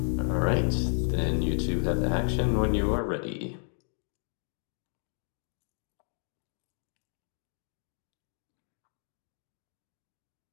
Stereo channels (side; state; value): right; silent; 56 dB below the other